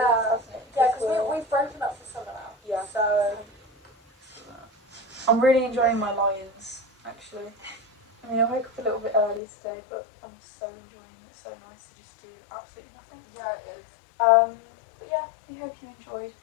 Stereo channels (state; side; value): drops out; right; at 9.4 s